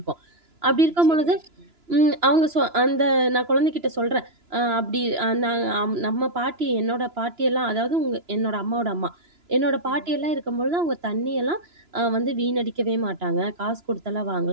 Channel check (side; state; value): left; late; 2.9 ms